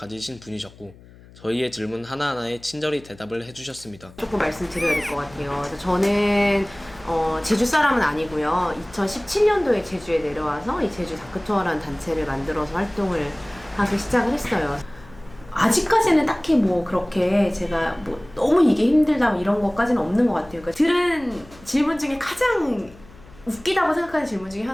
분이셨고 저희의 질문 하나하나에 친절히 대답을 해주셨습니다. 조금 말씀드려야 될 것 같아요. 그래서 저는 제주 사람은 아니고요. 2017년도에 제주에 내려와서 이 제주 다크투어라는 단체를 만들어서 활동을 하기 시작을 했어요. 아직까지는 딱히 뭐 그렇게 제가 뭐 너무 이게 힘들다 이런 것까지는 없는 것 같아요. 그러니까 들은 질문 중에 가장 웃기다고 생각하는 질문 중에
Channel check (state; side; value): noise; left; hum, 22 dB below the sound